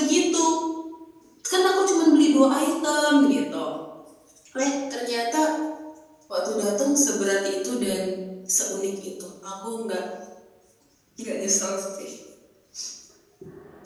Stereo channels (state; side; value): identical; both; correlation 1.00